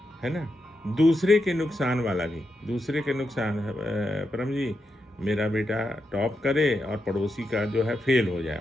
है ना। दूसरे के नुकसान वाला भी, दूसरे के नुकसान, परम जी मेरा बेटा टॉप करे और पड़ोसी का जो है फेल हो जाए,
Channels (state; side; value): normal; both; correlation 0.85